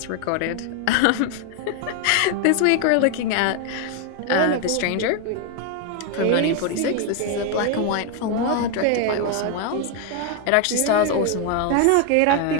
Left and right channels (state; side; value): different; both; correlation 0.01